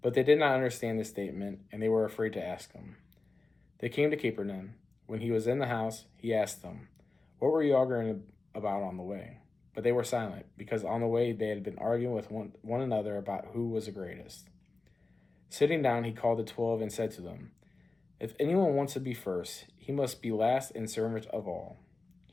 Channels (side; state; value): right; quieter; 3.5 dB